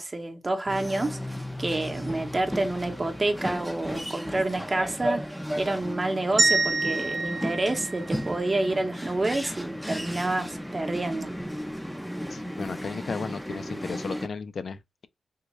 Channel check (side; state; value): both; normal; correlation 0.96